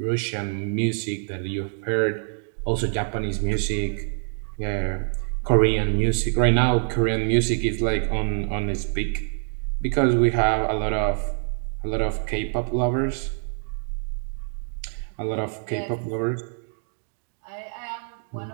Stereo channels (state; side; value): silent; left; 62 dB below the other